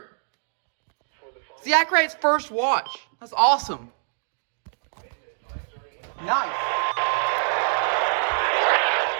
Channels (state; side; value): silent; left; digital silence